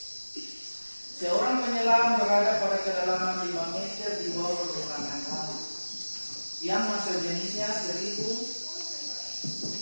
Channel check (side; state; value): both; inverted; correlation -1.00